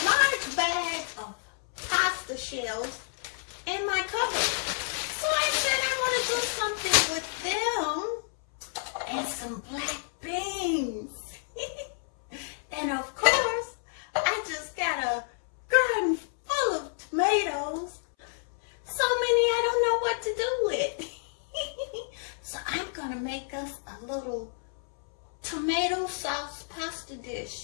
large bag of pasta shells in my cupboard. So I said I want to do something with them and some black beans. And of course, I just got a garden full of tomatoes. So many I don't know what to do with. So I'm gonna make us a little tomato sauce pasta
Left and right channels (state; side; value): silent; right; 58 dB below the other